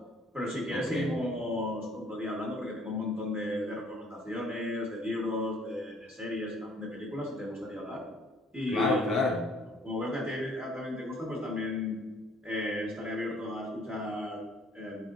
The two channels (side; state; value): both; normal; correlation 0.59